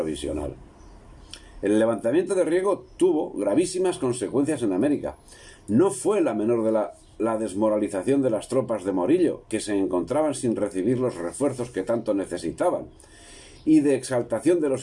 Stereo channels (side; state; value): both; identical; correlation 1.00